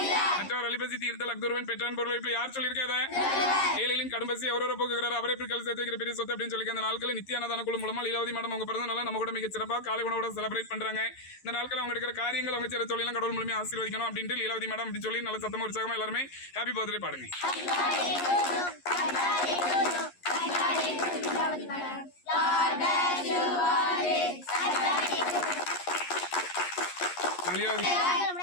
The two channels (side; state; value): right; late; 11 ms